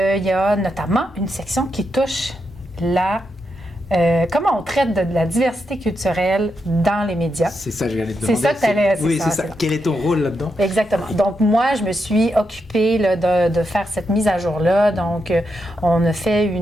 y a notamment une section qui touche comment on traite de la diversité culturelle dans les médias. C'est ça que j'allais te demander. C'est ça que tu allais... Oui, c'est ça. Quel est ton rôle là-dedans? Exactement. Donc, moi, je me suis occupée là, de faire cette mise à jour-là. Donc, on a fait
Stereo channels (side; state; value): both; normal; correlation 0.84